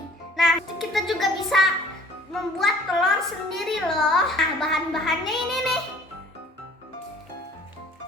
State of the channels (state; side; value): normal; both; correlation 0.53